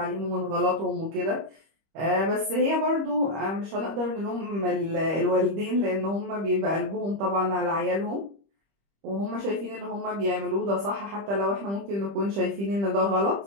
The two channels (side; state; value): left; late; 25 ms